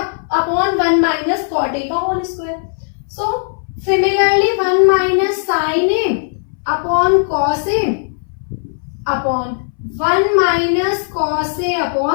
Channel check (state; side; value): silent; right; 64 dB below the other